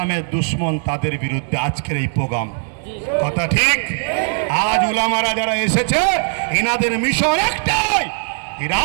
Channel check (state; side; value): silent; left; 67 dB below the other